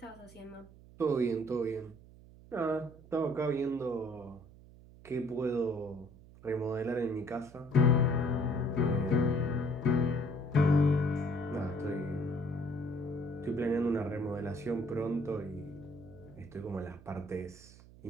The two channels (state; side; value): noise; right; hum, 21 dB below the sound